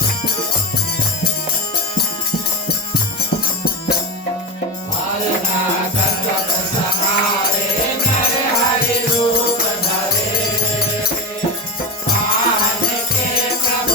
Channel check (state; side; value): normal; both; correlation 0.16